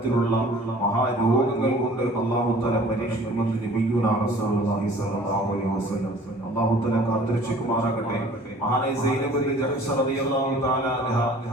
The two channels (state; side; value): normal; both; correlation 0.50